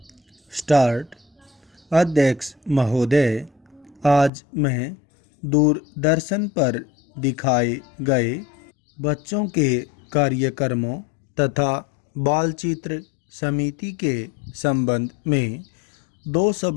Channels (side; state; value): right; drops out; at 4.3 s